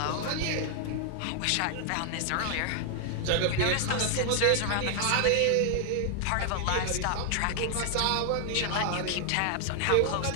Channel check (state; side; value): different; both; correlation 0.00